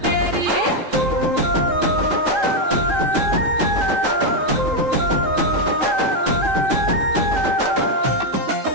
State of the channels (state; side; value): late; left; 3.8 ms